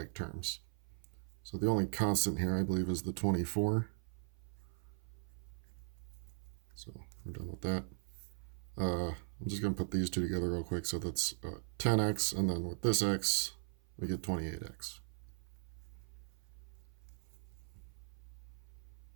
terms. So the only constant here, I believe, is the 24. So we're done with that. I'm just going to put these two together real quick. So that's 10x, and then with this x, we get 28x.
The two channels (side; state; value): left; silent; 51 dB below the other